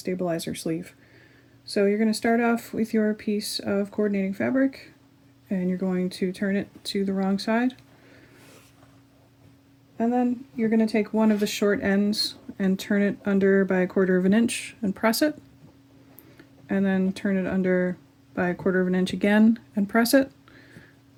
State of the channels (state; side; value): identical; both; correlation 1.00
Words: sleeve. So you're going to start off with your piece of coordinating fabric, and you're going to turn it to the wrong side. And then you're going to take one of the short ends and turn it under by 1/4 inch and press it. And then turn it under by 1/4 inch again and press it.